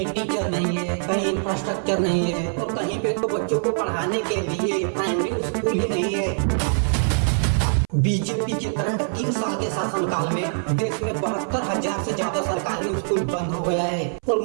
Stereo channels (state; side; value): silent; left; 63 dB below the other